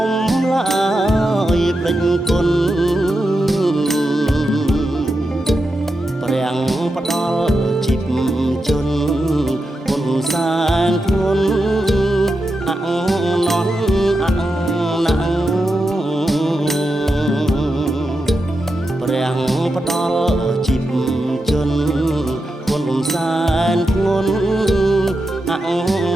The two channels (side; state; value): both; normal; correlation 0.88